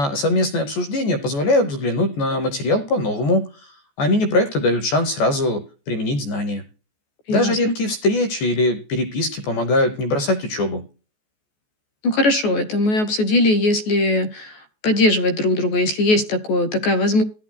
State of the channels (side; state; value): right; late; 14 ms